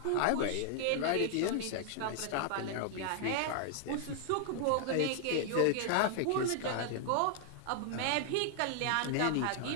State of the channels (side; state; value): both; different; correlation 0.00